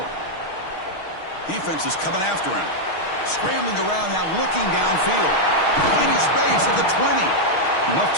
Defense is coming after him. Scrambling around now, looking downfield. Finding space at the 20. Enough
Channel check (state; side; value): late; right; 6.4 ms